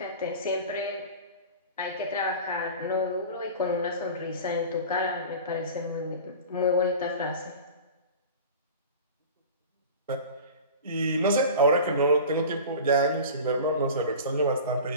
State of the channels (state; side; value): inverted; both; correlation -0.36